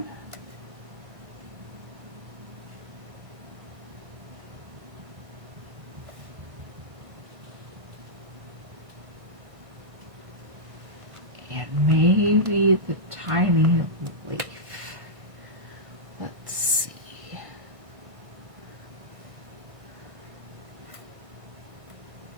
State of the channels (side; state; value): left; late; 1.6 ms